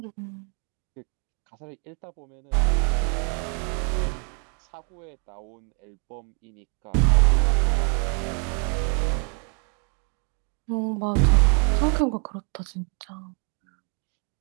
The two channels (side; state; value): left; quieter; 39.5 dB